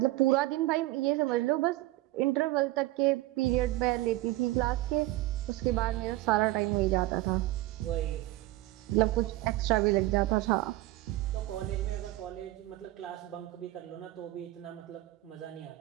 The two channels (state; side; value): quieter; left; 17.3 dB